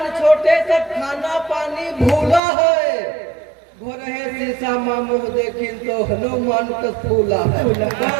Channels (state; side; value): drops out; left; at 2.4 s